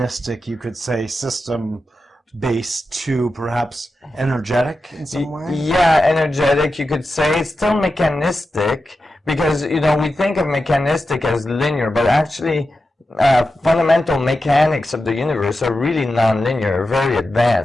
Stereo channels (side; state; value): both; normal; correlation 0.91